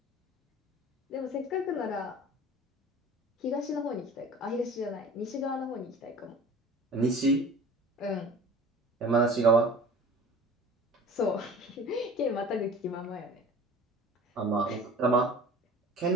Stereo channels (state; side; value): normal; both; correlation 0.42